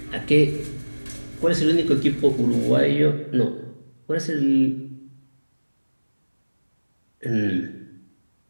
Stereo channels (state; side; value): inverted; both; correlation -1.00